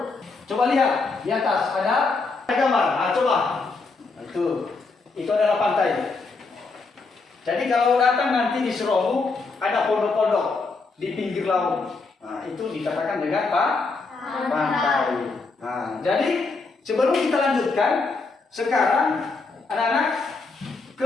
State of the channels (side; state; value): right; quieter; 4.0 dB